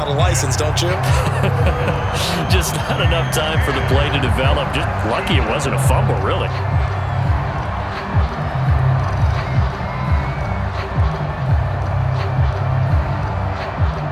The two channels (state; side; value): identical; both; correlation 1.00